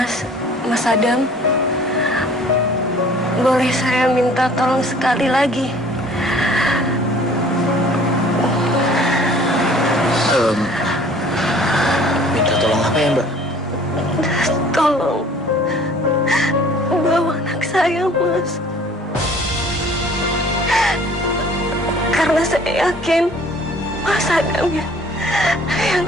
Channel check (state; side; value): normal; both; correlation 0.52